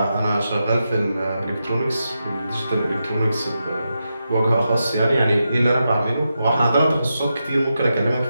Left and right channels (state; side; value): inverted; both; correlation -0.87